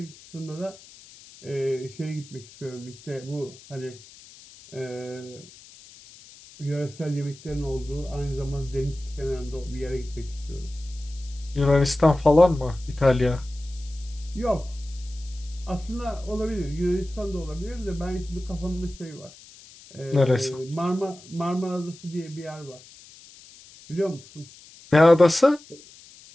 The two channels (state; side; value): noise; left; hiss, 21 dB below the sound